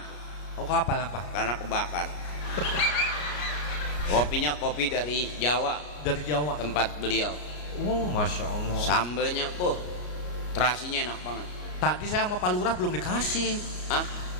Oh, kapal apa? Karena kebakar. Kopinya kopi dari Jawa. Dari Jawa. Tempat beliau. Oh, masya Allah. Sambelnya, terasinya enak banget. Tadi saya sama Pak Lurah belum dikasih. Hah?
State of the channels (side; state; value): right; late; 33 ms